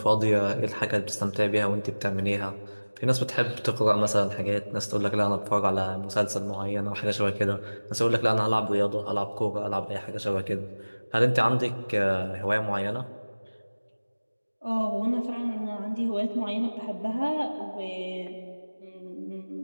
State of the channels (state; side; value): inverted; both; correlation -1.00